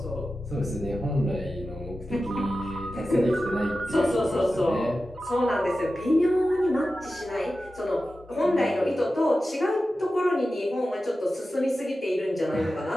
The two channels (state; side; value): normal; both; correlation 0.93